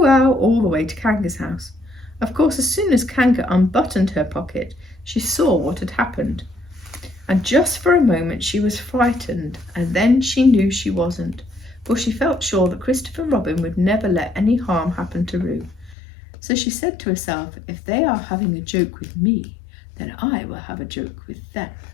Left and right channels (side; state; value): right; drops out; at 16.0 s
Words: ow, all the way to Kanga's house. Of course, as soon as Kanga unbuttoned her pocket, she saw what had happened. And just for a moment she was frightened, and then she knew she wasn't, for she felt sure that Christopher Robin would never let any harm happen to Roo. So she said to herself, if they are having a joke with me, then I will have a joke with them.